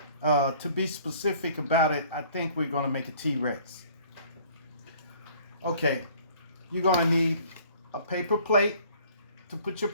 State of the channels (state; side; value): inverted; both; correlation -0.54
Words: To be specific about it, I think we're going to make a T-Rex. Okay, you're going to need a paper plate to put your